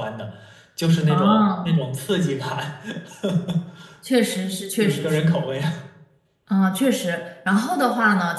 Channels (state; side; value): identical; both; correlation 1.00